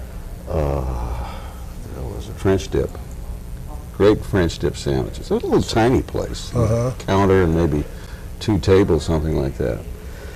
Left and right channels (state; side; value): identical; both; correlation 1.00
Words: was it French dip? Great French dip sandwiches. It was a little tiny place. Counter and maybe 2 tables, something like that.